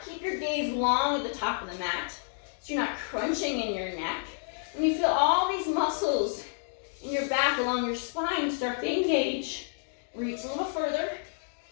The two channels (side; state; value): right; silent; digital silence